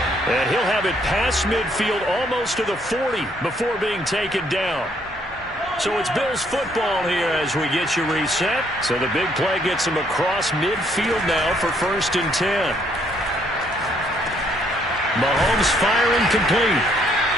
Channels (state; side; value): normal; both; correlation 0.68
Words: And he'll have it past midfield almost to the 40 before being taken down. So it's Bills football here as we get you reset. So the big play gets him across midfield now for 1st and 10. Mahomes firing complete.